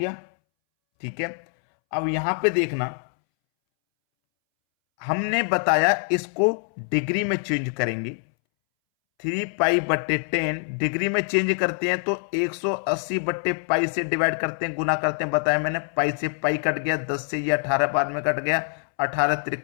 ठीक है। अब यहां पे देखना, हमने बताया इसको डिग्री में चेंज करेंगे। 3π/10 डिग्री में चेंज करते हैं तो 180/π से डिवाइड करते हैं, गुना करते हैं, बताया मैंने। पाई से पाई कट गया, 10 से ये 18 बाद में कट गया, 18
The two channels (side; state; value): right; silent; 62 dB below the other